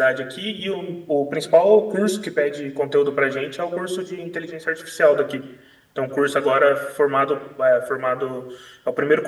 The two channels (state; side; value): identical; both; correlation 1.00